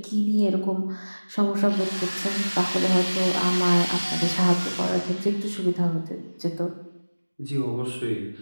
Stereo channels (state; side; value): inverted; both; correlation -1.00